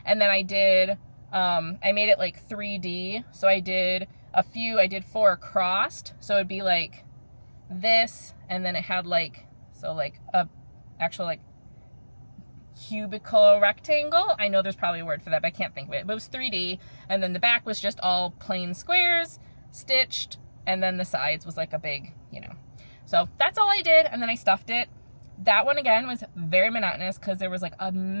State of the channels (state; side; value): inverted; both; correlation -1.00